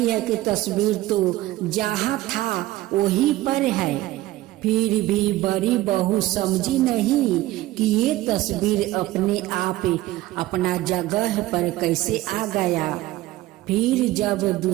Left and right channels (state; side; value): quieter; left; 16.5 dB